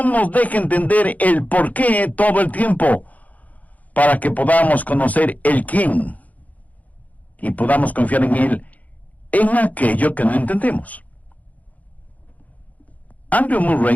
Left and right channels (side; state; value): right; late; 0.076 ms